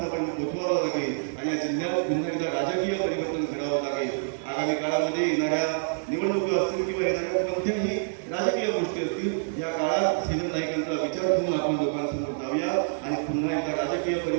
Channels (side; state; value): left; silent; 56 dB below the other